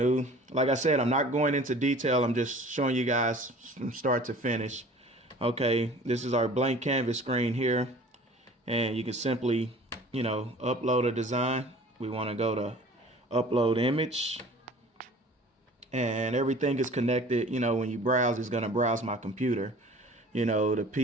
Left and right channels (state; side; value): normal; both; correlation 0.46